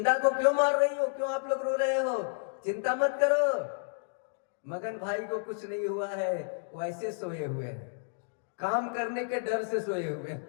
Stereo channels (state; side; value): silent; right; digital silence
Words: को क्यों मार रही हो? क्यों आप लोग रो रहे हो? चिंता मत करो, मगन भाई को कुछ नहीं हुआ है, वो ऐसे सोए हुए हैं, काम करने के डर से सोए हुए